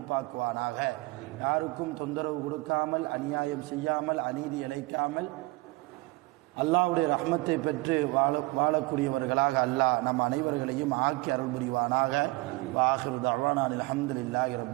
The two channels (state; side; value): quieter; left; 22.8 dB